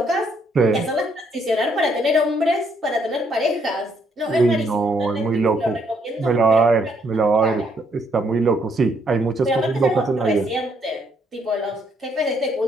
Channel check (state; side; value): normal; both; correlation 0.71